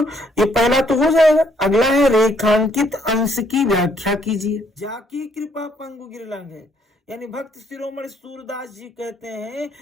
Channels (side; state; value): both; normal; correlation 0.68